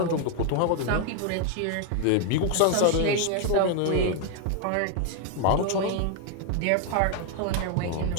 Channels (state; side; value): different; both; correlation 0.01